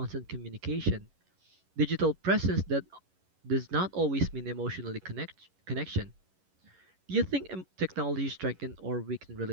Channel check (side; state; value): left; late; 11 ms